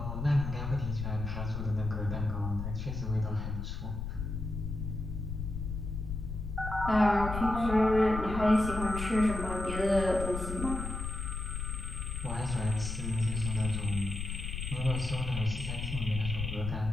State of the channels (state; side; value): noise; left; rumble, 4 dB below the sound